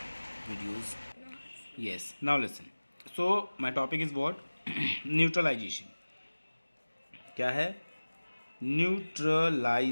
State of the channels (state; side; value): inverted; both; correlation -1.00